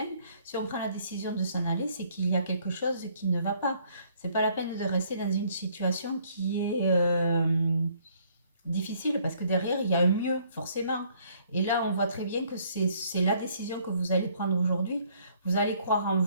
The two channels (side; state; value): both; inverted; correlation -0.64